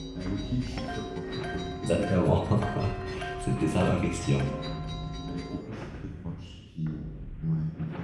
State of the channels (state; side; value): identical; both; correlation 1.00